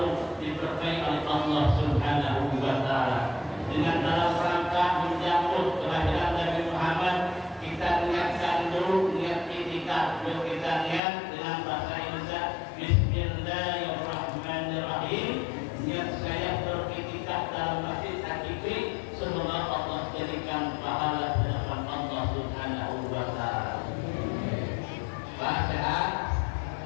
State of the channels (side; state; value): right; drops out; at 11.0 s